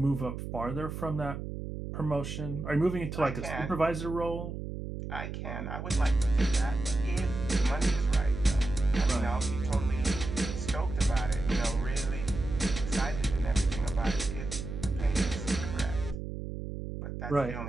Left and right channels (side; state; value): right; noise; hum, 7 dB below the sound